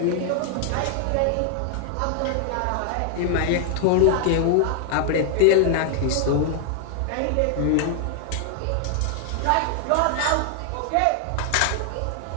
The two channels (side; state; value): both; different; correlation 0.00